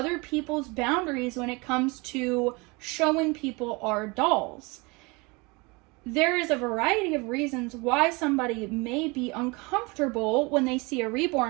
people's boundaries when it comes to showing people our dolls. There is a variety of reasons why somebody may be uncomfortable when they see a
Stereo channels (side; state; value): left; quieter; 26.7 dB